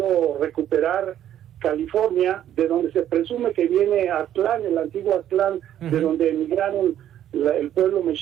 recuperar California, de donde se presume que viene Aztlán, el antiguo Aztlán, de donde emigraron el pueblo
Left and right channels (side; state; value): left; quieter; 11.2 dB